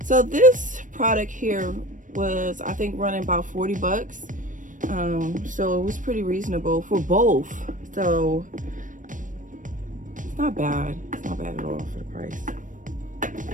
So this product here was, I think, running about 40 bucks. So it was pretty reasonable for both. So it's not bad. It's not bad at all for the price.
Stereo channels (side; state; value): left; late; 0.38 ms